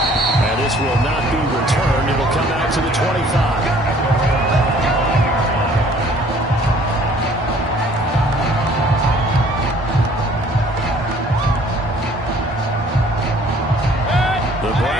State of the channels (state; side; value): normal; both; correlation 0.56